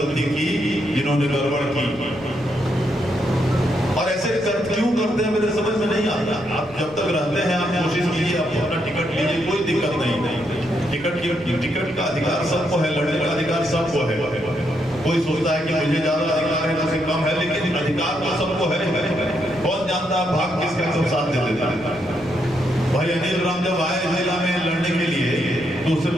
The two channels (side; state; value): right; noise; rumble, 22 dB below the sound